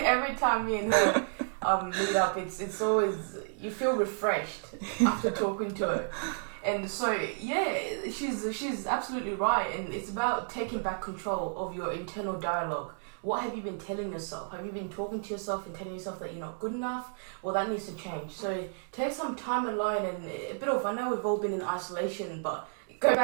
time me and her meet up, it's always, you feel refreshed after talking to her. And so, yeah, she's absolutely right. And it's about taking back control of your internal dialogue. What have you been telling yourself? Have you been talking to yourself and telling yourself that you're not good enough? Well, that needs to change. So take some time alone and a bit of, I know we've all been in isolation, but go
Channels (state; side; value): silent; left; digital silence